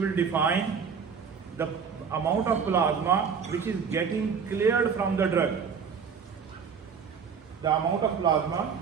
define the amount of plasma which is getting cleared from the drug. The amount of plasma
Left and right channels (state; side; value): quieter; left; 6.4 dB